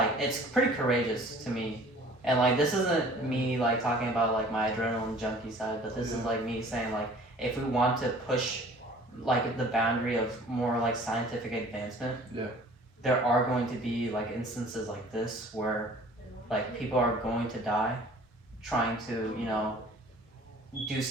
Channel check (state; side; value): normal; both; correlation 0.50